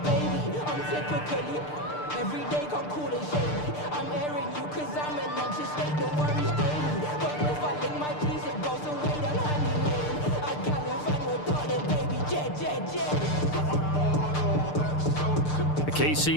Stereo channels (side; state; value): right; late; 6.7 ms